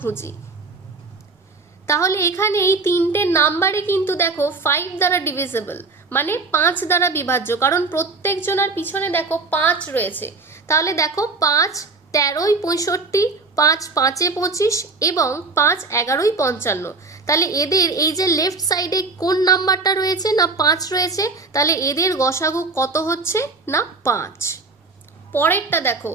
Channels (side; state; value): left; quieter; 3.8 dB